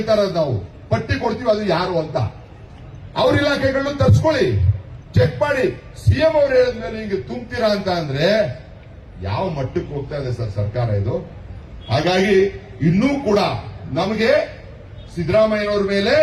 ಇರೋದು, ನಾವು ಪಟ್ಟಿ ಕೊಡ್ತೀವಿ ಅದು ಯಾರು ಅಂತ. ಅವ್ರ ಇಲಾಖೆಗಳನ್ನು ತರ್ಸ್ಕೊಳ್ಳಿ, ಚೆಕ್ ಮಾಡಿ. ಸಿಎಂ ಅವ್ರು ಹೇಳಿದ್ಮೇಲೆ ಹಿಂಗೆ ತುಂಬ್ತೀರಾ ಅಂತ ಅಂದ್ರೆ ಯಾವ ಮಟ್ಟಕ್ಕೆ ಹೋಗ್ತಾ ಇದೆ ಸರ್ ಸರ್ಕಾರ ಇದು? ಹಾಗಾಗಿ ಇನ್ನೂ ಕೂಡ ನಮಗೆ ಸಿದ್ದರಾಮಯ್ಯನವ್ರ ಮೇಲೆ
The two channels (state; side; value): identical; both; correlation 1.00